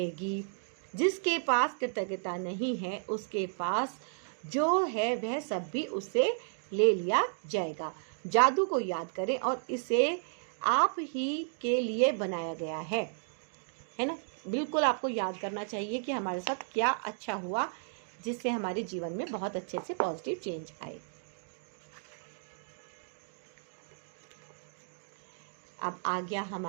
जिसके पास कृतज्ञता नहीं है, उसके पास जो है वह सब भी उससे ले लिया जाएगा। जादू को याद करें और इसे आप ही के लिए बनाया गया है ना। बिल्कुल आपको याद करना चाहिए कि हमारे साथ क्या अच्छा हुआ, जिससे हमारे जीवन में बहुत अच्छे से पॉजिटिव चेंज आए। अब आ गया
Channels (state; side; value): silent; left; digital silence